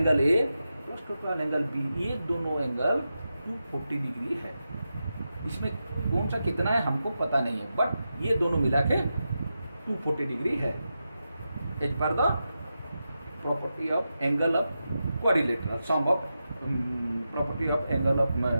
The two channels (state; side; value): inverted; both; correlation -0.89